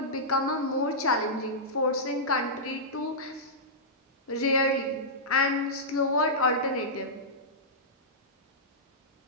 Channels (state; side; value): normal; both; correlation -0.14